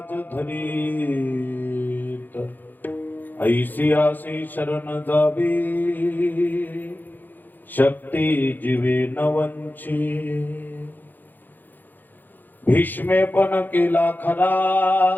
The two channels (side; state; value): right; late; 0.087 ms